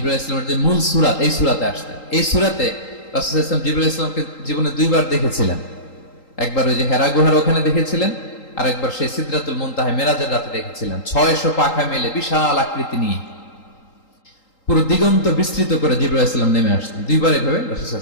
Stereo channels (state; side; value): late; right; 3.8 ms